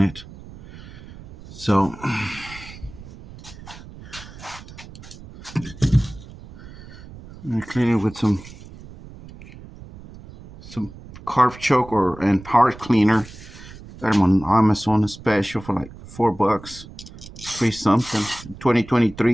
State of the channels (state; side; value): noise; right; rumble, 17 dB below the sound